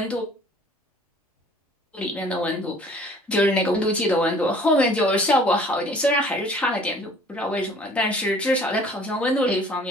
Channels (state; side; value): normal; both; correlation 0.52